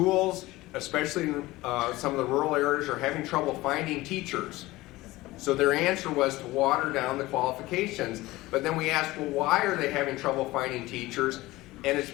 especially in some of the rural areas, are having trouble finding teachers. So their answer was to water down the qualifications. But then we asked, well, why are they having trouble finding teachers? And it's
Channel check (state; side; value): quieter; right; 18.9 dB